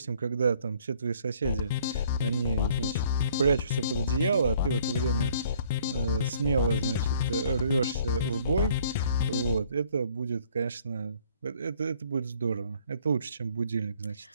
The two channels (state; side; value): inverted; both; correlation -0.59